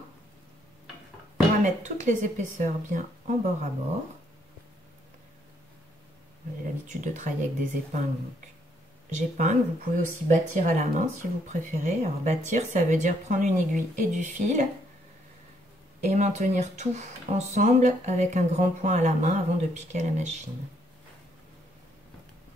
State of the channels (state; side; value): normal; both; correlation 0.71